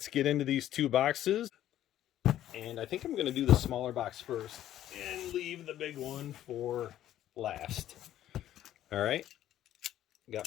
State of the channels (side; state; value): right; quieter; 12.4 dB